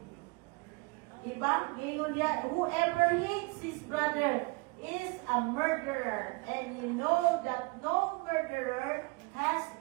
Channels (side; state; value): left; quieter; 27.5 dB